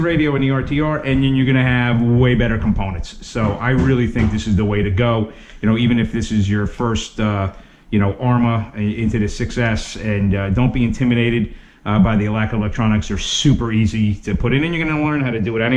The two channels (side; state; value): both; identical; correlation 1.00